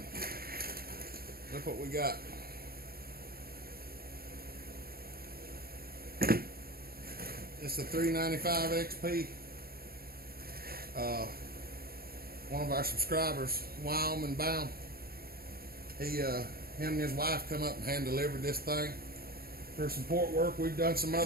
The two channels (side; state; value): left; late; 0.44 ms